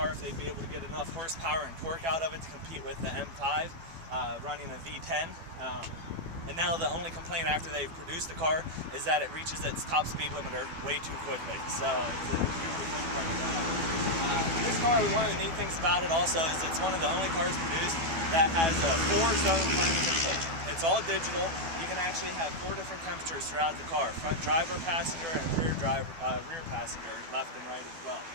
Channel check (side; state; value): left; late; 12 ms